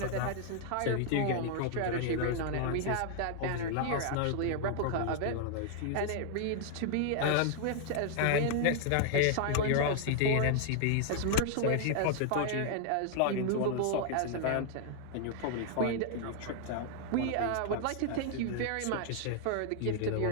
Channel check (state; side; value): different; both; correlation 0.00